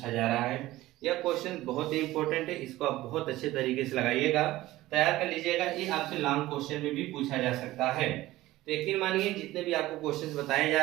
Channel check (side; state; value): left; quieter; 16.8 dB